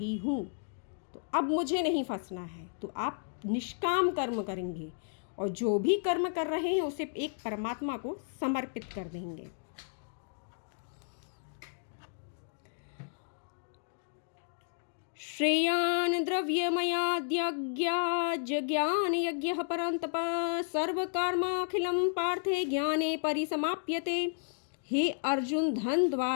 हूँ, तो अब मुझे नहीं फंसना है। तो आप निष्काम कर्म करेंगे और जो भी कर्म कर रहे हैं उसे एक परमात्मा को समर्पित कर देंगे। श्रेयान् द्रव्यमयाद्यज्ञान यज्ञः परन्तप सर्वकर्माखिलं पार्थे ज्ञाने परिसमाप्यते। हे अर्जुन, धन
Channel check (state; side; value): silent; right; digital silence